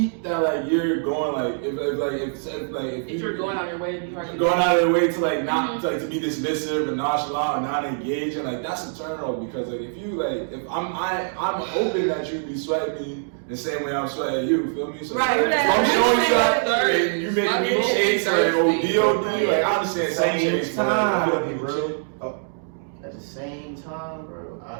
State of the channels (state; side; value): silent; left; digital silence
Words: that like you're going like if you're going out of your way to be hard to going out of your way to like not like to be dismissive and nonchalant and not engaging, like that's a turn off because like if you like if I'm hoping that you be sweating me the same way I'm sweating you, feel me? So Right, if I'm showing you that and you making me chase like ODOD, like I understand some chase, but like, I'll be real. At the same time, bro,